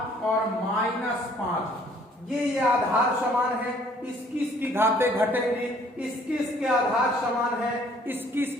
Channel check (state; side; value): normal; both; correlation 0.59